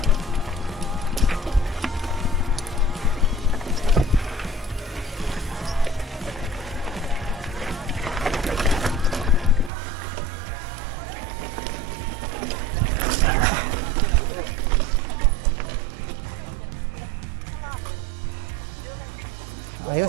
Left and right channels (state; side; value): drops out; left; at 9.7 s